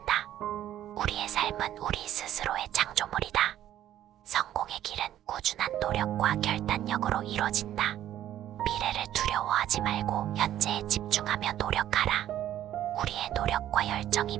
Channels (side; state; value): left; quieter; 12.1 dB